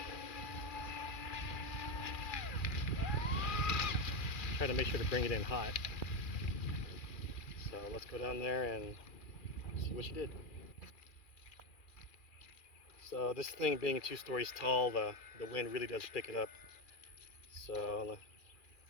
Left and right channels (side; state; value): right; late; 2.4 ms